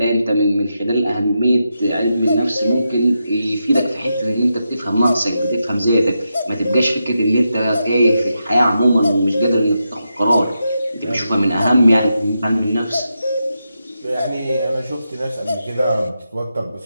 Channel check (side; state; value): both; inverted; correlation -0.86